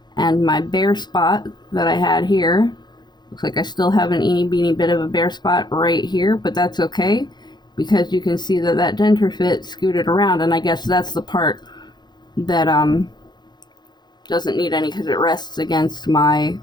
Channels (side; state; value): right; late; 0.21 ms